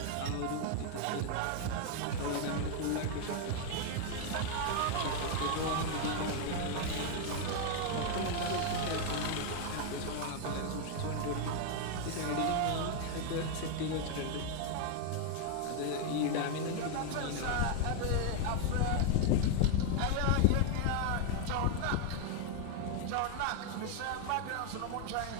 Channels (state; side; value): different; both; correlation 0.00